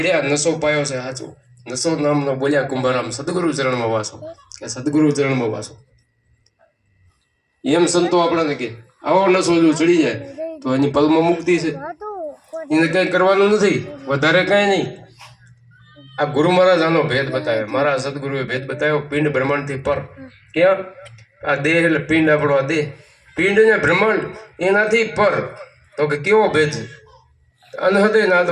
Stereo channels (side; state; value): both; identical; correlation 1.00